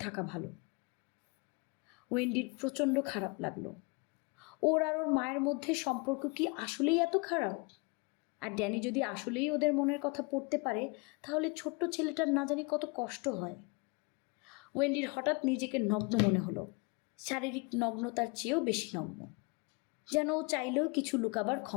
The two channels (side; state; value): right; quieter; 30.1 dB